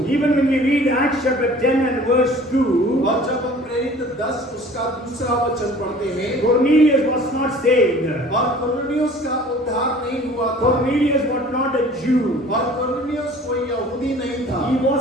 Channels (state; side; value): normal; both; correlation 0.48